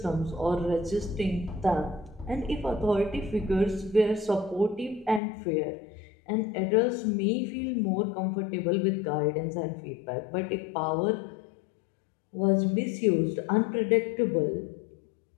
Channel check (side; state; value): right; drops out; at 5.2 s